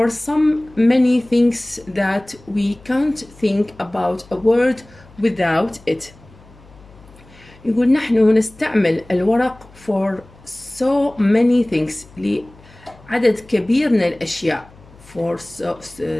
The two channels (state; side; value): noise; left; hum, 24 dB below the sound